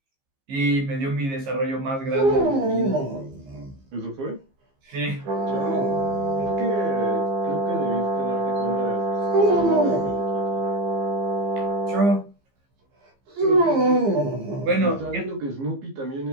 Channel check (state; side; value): late; left; 15 ms